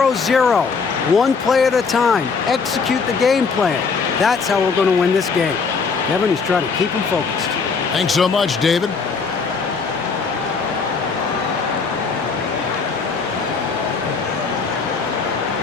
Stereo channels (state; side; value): quieter; right; 5.1 dB